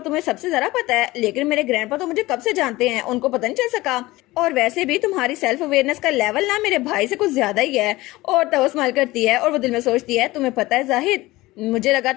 तुम्हें सबसे ज्यादा पता है, लेकिन मेरे ग्रैंडपा तो मुझे कब से जानते हैं, उनको पता नहीं चल सका, और वैसे भी तुम्हारी सेल्फ अवेयरनेस का लेवल ना मेरे भाई से कुछ ज्यादा ही है। और तब वो स्माइल करती है और वो दिल में सोचती है तुम्हें पता है जाहिद, मुझे लगा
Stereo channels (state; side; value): quieter; right; 19.2 dB